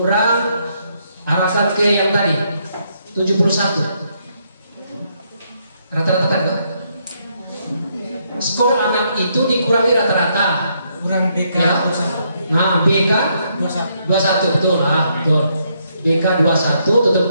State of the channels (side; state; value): both; inverted; correlation -0.75